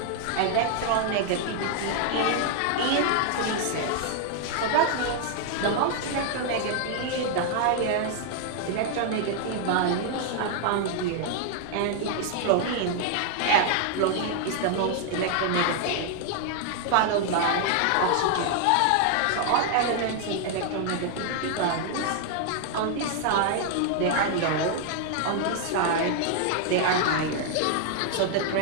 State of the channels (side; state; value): both; different; correlation 0.00